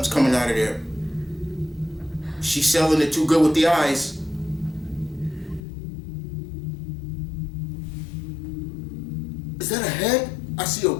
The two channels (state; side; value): drops out; right; at 5.6 s